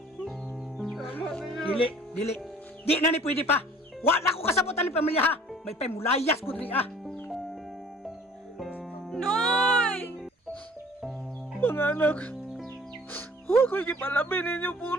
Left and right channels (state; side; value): normal; both; correlation 0.51